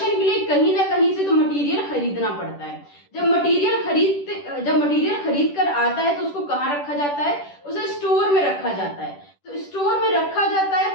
के लिए कहीं ना कहीं से तो मटेरियल खरीदना पड़ता है। जब मटेरियल खरीद कर आता है तो उसको कहाँ रखा जाता है? उसे स्टोर में रखा जाता है। तो स्टोर में रखा जाता है,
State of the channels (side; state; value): right; late; 10 ms